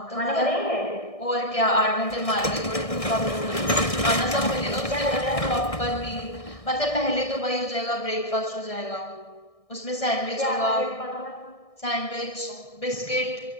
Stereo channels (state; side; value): late; right; 1.6 ms